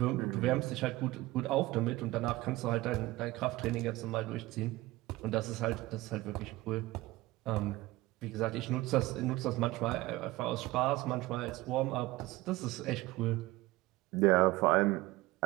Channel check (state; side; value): quieter; left; 19.2 dB